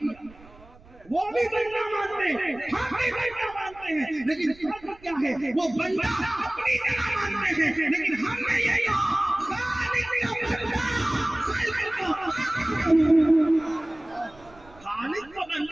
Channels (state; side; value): noise; right; rumble, 24 dB below the sound